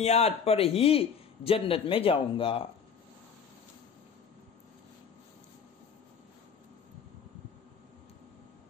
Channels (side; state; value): right; quieter; 6.6 dB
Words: پر ہی جنت میں جاؤں گا۔